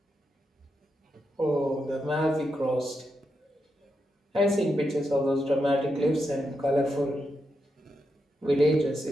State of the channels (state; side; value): normal; both; correlation 0.85